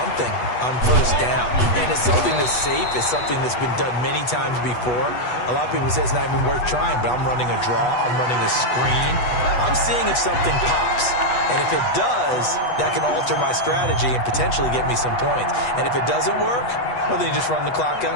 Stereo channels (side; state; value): right; late; 8.2 ms